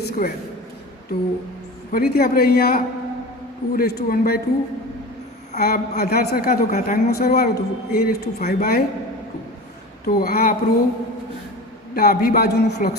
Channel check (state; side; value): normal; both; correlation 0.33